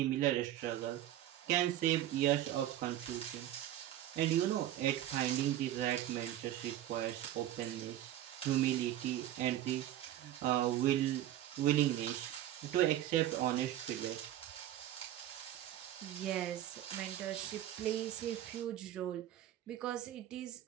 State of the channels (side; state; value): left; quieter; 12.7 dB